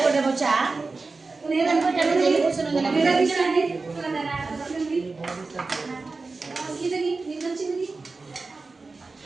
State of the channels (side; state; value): left; quieter; 3.9 dB